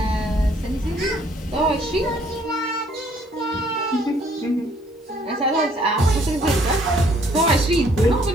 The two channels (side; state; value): both; normal; correlation 0.63